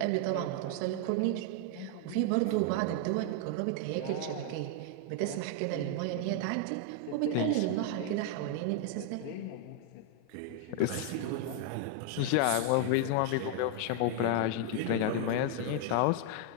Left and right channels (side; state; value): both; different; correlation 0.00